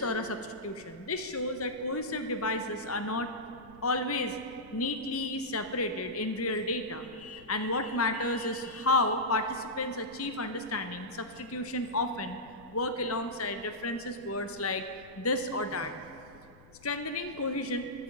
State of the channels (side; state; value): left; noise; rumble, 23 dB below the sound